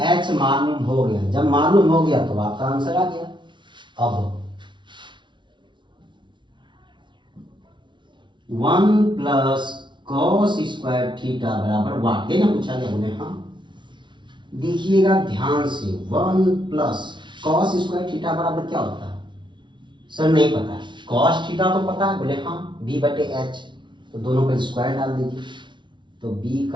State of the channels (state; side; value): late; left; 0.23 ms